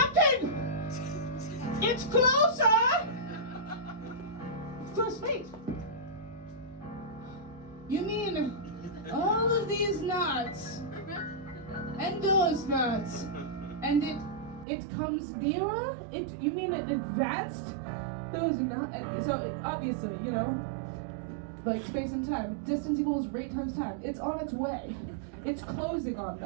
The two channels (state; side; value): drops out; left; at 14.7 s